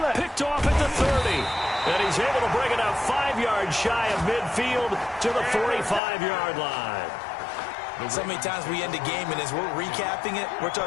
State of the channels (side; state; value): right; drops out; at 6.0 s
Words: Picked off at the 30. And he's able to bring it out 5 yards shy of midfield to the 45-yard line. So many times we end a game, and as we're recapping it, we're